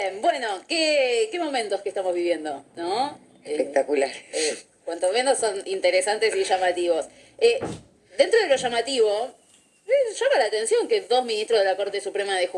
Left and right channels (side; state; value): both; identical; correlation 1.00